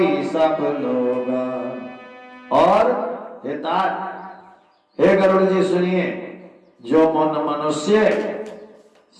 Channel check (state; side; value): identical; both; correlation 1.00